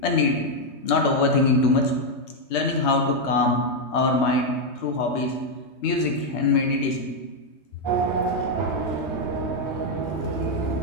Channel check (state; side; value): late; right; 3.2 ms